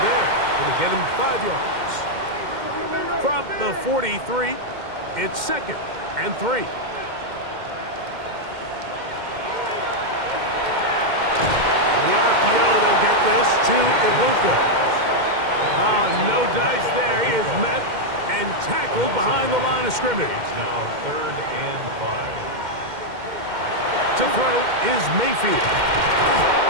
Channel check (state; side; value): late; left; 2.1 ms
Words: there. Going to get him 5 yards. From the 43, it's second and 3. The RPO, they'll get this to Ibuka. No dice there. He is met and tackled behind the line of scrimmage. Now third and 5. To throw is Mayfield.